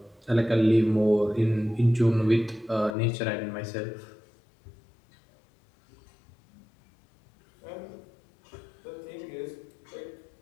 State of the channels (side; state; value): right; drops out; at 3.0 s